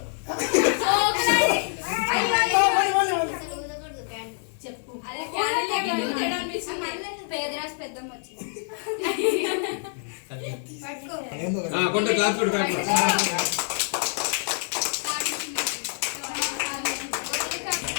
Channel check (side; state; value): right; silent; 61 dB below the other